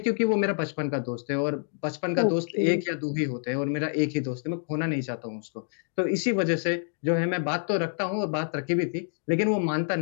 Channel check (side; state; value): right; silent; digital silence